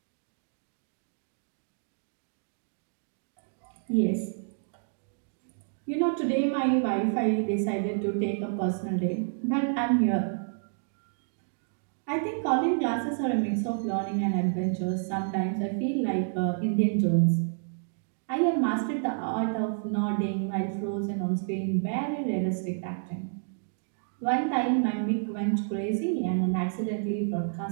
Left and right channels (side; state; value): left; silent; digital silence